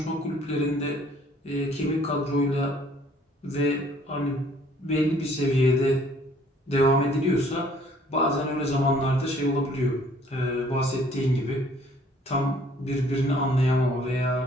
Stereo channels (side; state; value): both; normal; correlation 0.59